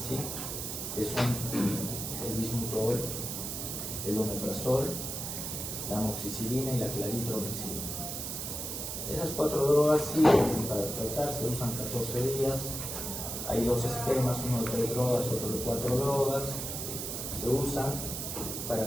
que son el bismutol, el omeprazol, la amoxicilina y la claritromicina. Esas 4 drogas sirven para tratar, se usan 14 días. Hay 2 esquemas, uno de 3 drogas, otro de 4 drogas. Se usan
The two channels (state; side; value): noise; right; hiss, 5 dB below the sound